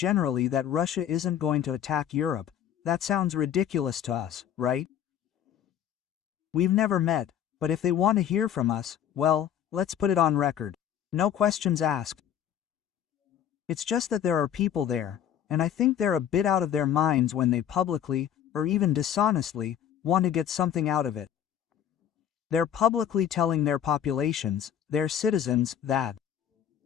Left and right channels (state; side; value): quieter; right; 9.7 dB